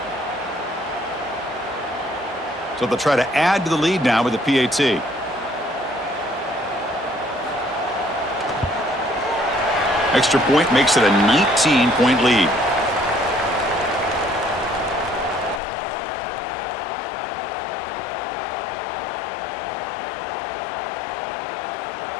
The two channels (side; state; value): right; drops out; at 15.6 s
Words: So they'll try to add to the lead now with the PAT. Extra point makes it a 19-point lead.